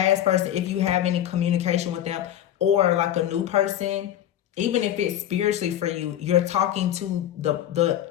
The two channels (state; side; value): quieter; right; 11.5 dB